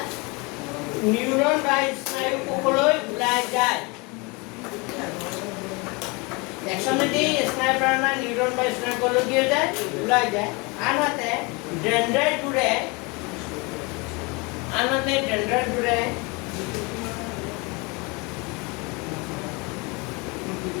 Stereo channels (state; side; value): quieter; right; 28.1 dB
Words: নিউৰন বা স্নায়ু কোষলৈ ওলাই যায় একচনেদি স্নায়ু প্ৰেৰণা নিউৰন বা স্নায়ু কোষলৈ কি হৈ যায় ওলাই যায় আনহাতে ডেনড্ৰাইটবোৰে